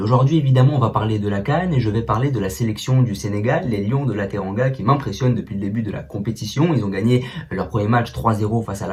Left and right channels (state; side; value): identical; both; correlation 1.00